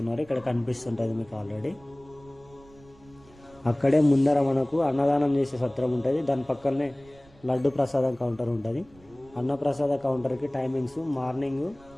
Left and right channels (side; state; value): right; noise; rumble, 26 dB below the sound